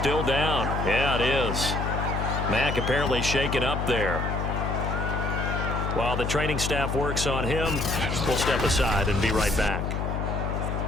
down. Yeah, it is. Mack apparently shaken up there. While the training staff works on him, we'll step aside and be right back.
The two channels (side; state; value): left; noise; hum, 1 dB below the sound